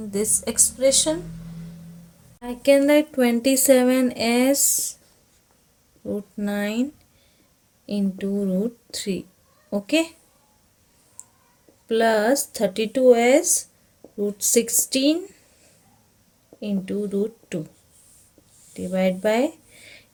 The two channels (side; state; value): both; identical; correlation 1.00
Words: this expression. I can write 27 as root 9 into root 3. Okay, plus 32 as root 16 into root 2 divide by